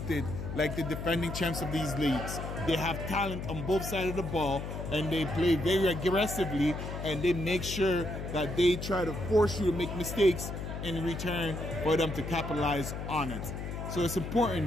like the defending champs of these leagues. They have talent on both sides of the ball, and they play very aggressively, and they make sure that they try to force you to make mistakes in return for them to capitalize on it. So it's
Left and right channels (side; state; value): left; noise; hum, 6 dB below the sound